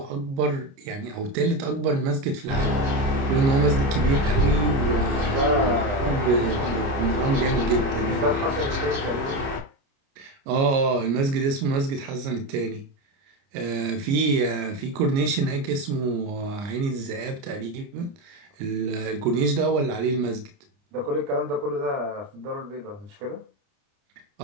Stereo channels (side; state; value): left; late; 29 ms